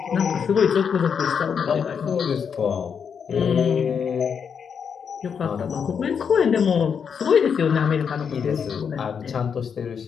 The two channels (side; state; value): right; quieter; 6.8 dB